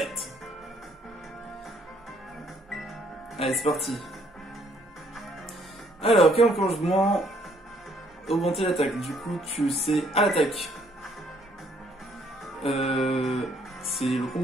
Allez, c'est parti. Alors, quel enclenchement? Augmenter l'attaque. Du coup, tu sais à l'attaque. C'est le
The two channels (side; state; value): both; normal; correlation 0.66